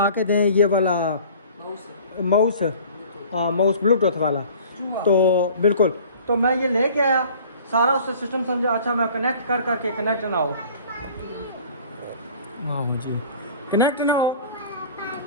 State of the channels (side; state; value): both; inverted; correlation -0.47